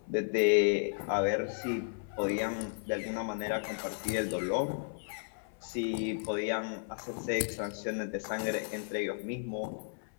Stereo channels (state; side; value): silent; right; 55 dB below the other